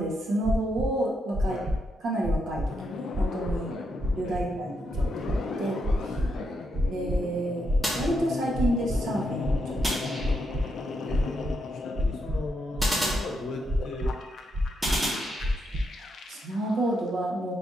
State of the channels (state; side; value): normal; both; correlation 0.81